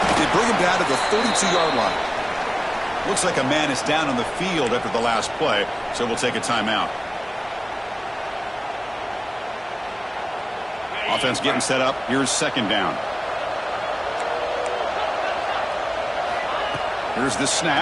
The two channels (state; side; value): identical; both; correlation 1.00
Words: They bring him down to the 32-yard line. Looks like a man is down on the field after the last play, so we'll take a timeout. Offense getting set up. Here's second down. Here's the